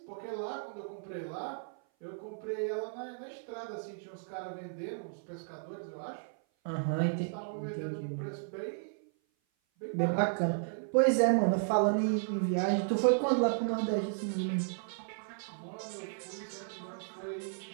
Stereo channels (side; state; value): left; silent; 55 dB below the other